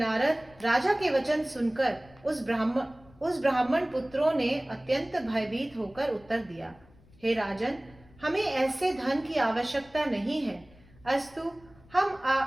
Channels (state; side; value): noise; left; rumble, 26 dB below the sound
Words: राजा के वचन सुनकर उस ब्राह्मण पुत्रों ने अत्यंत भयभीत होकर उत्तर दिया, हे राजन, हमें ऐसे धन की आवश्यकता नहीं है। अस्तु, हम